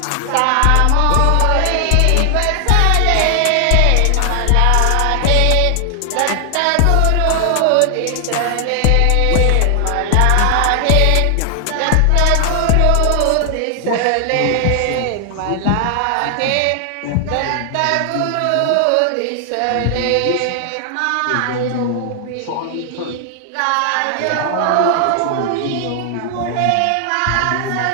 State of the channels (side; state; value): both; different; correlation 0.00